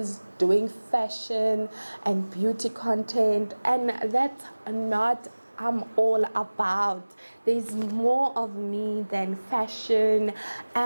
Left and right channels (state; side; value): inverted; both; correlation -1.00